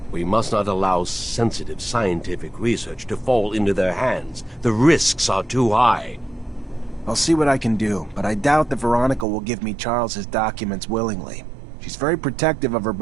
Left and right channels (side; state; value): left; drops out; at 9.2 s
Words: We must not allow sensitive scientific research to fall into their hands. The risks are too high. I'll see what I can do, but I doubt that Veronica will give me Charles's documents willingly. She's very protective of her